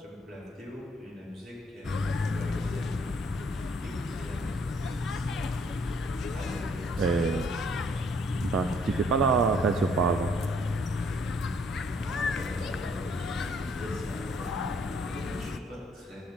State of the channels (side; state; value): both; normal; correlation 0.65